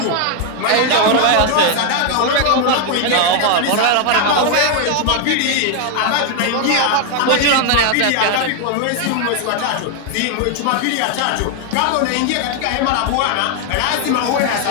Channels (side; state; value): both; different; correlation 0.01